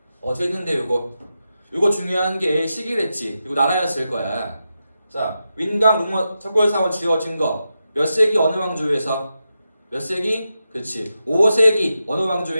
재밌는데 요거 중요한 게 시기랬지. 이거 나라였을 거야. 자, 윈강, 룽먼, 석굴사원 지어진 거 몇 세기 어느 왕조에서? 몇 세기? 그치 5세기 어느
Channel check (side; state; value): both; inverted; correlation -0.89